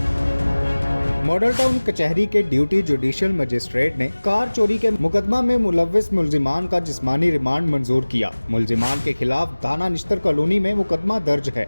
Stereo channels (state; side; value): inverted; both; correlation -1.00